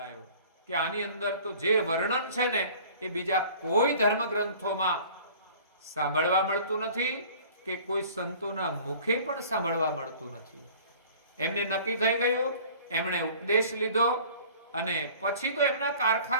કે આની અંદર તો જે વર્ણન છે ને એ બીજા કોઈ ધર્મ ગ્રંથોમાં સાંભળવા મળતું નથી કે કોઈ સંતોના મુખે પણ સાંભળવા મળતું નથી. એમને નક્કી થઈ ગયું, એમણે ઉપદેશ લીધો અને પછી તો એમના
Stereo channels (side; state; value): both; inverted; correlation -0.48